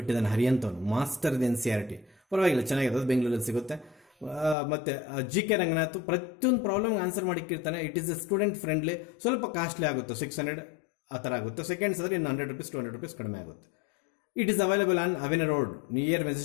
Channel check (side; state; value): right; drops out; at 4.5 s